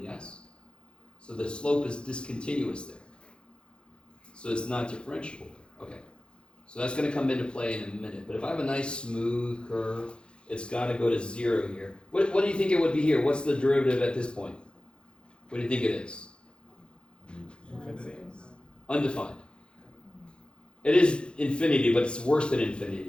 yes? So the slope is discontinuous there. So it's not differentiable. Okay. So that's going to come into play in a minute. But if I have a nice smooth curve, it's got to go to 0 here. What do you think it would be here? What's the derivative at this point? What do you think it is? Undefined. It is infinity, but it's worse than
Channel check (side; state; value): right; late; 0.054 ms